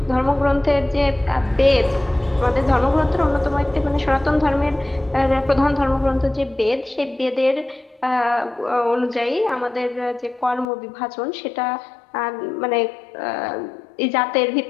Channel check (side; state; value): right; drops out; at 10.7 s